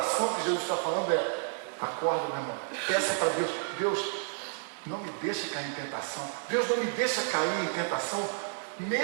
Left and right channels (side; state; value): left; silent; digital silence